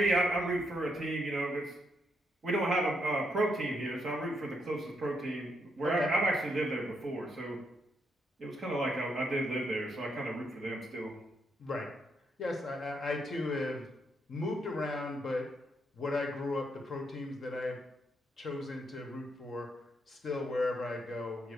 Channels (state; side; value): normal; both; correlation 0.77